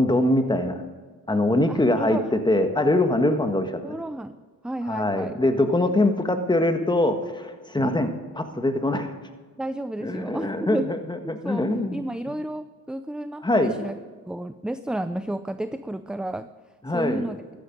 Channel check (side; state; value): both; normal; correlation 0.71